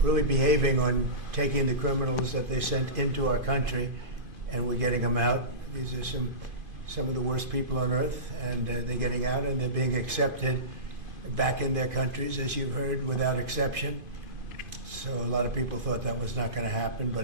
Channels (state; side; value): late; left; 2.5 ms